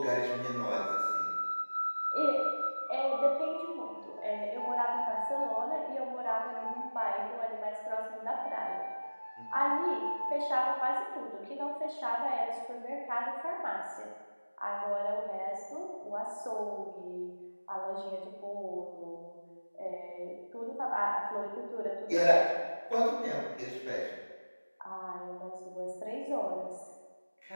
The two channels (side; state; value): both; inverted; correlation -1.00